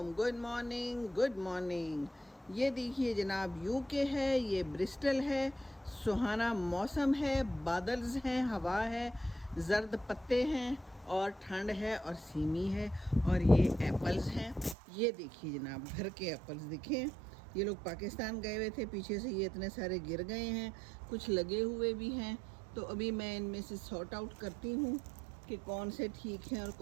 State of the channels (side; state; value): left; drops out; at 14.8 s